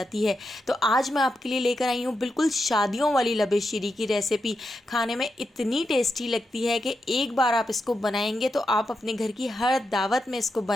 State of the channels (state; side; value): normal; both; correlation 0.86